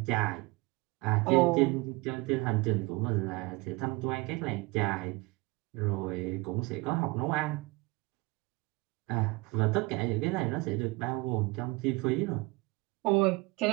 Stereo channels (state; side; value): quieter; left; 24.8 dB